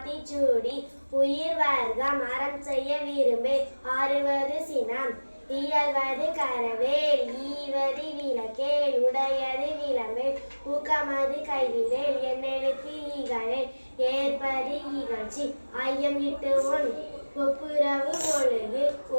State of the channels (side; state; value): both; inverted; correlation -1.00